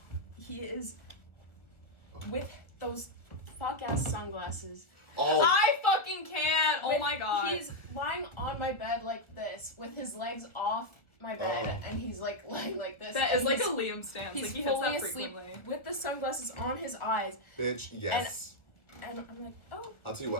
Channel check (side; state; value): right; late; 1.3 ms